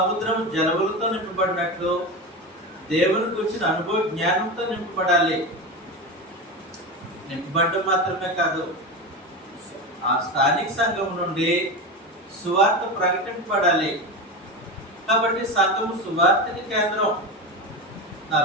జలవులతో నింపబడినట్లు దేవుని గురించిన అనుభవ జ్ఞానంతో నింపబడాలి. నింపబడటం మాత్రమే కాదు, ఆ స్థానిక సంఘం నుండి సువార్త ప్రకటింపబడాలి. కాబట్టి సంఘము సువార్తకి కేంద్రం.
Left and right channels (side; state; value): both; normal; correlation 0.21